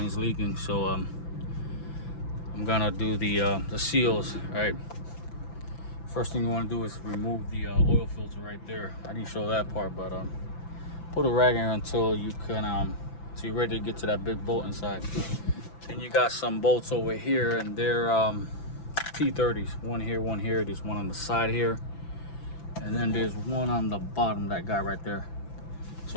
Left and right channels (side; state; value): right; late; 5.9 ms